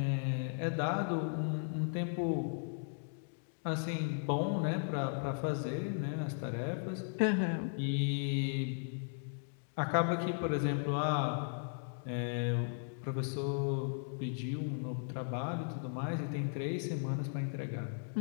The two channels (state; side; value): silent; right; digital silence